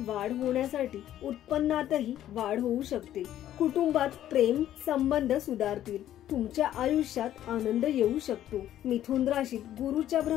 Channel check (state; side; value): quieter; right; 12.1 dB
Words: होण्यासाठी उत्पन्नातही वाढ होऊ शकते। कुटुंबात प्रेम संबंध सुधारतील। तुमच्या आयुष्यात आनंद येऊ शकतो। मिथुन राशीत गुरुच्या